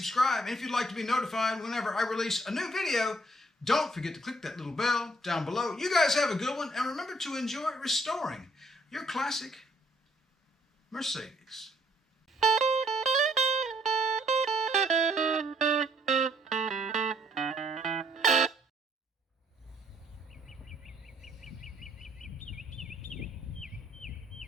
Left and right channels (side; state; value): both; normal; correlation 0.66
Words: And if you'd like to be notified whenever I release a new video, don't forget to click that little bell down below. You guys have a good one, and remember to enjoy restoring your classic Mercedes.